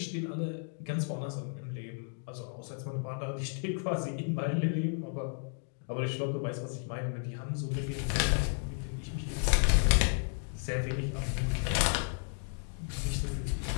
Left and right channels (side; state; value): right; silent; 56 dB below the other